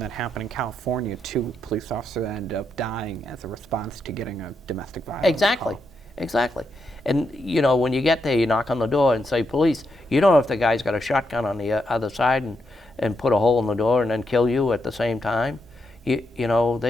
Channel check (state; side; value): normal; both; correlation 0.82